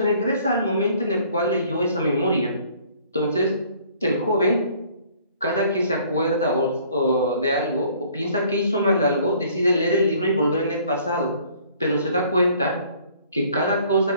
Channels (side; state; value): both; inverted; correlation -0.58